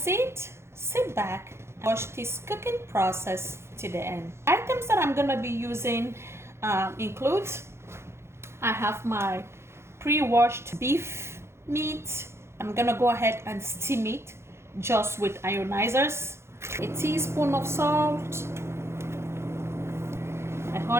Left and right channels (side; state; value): left; late; 0.13 ms